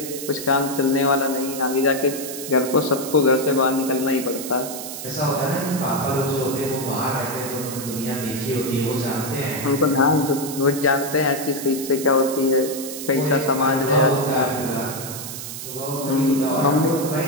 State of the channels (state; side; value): noise; right; hiss, 9 dB below the sound